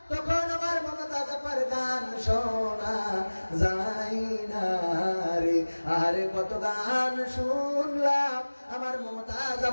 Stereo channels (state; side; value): inverted; both; correlation -1.00